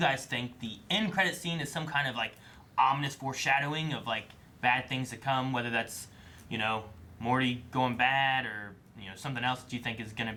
think the end credits scene is some kind of, like, ominous foreshadowing of, like, bad things to come, whether that's, Morty going bad or, something else that you think is going to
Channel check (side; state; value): both; identical; correlation 1.00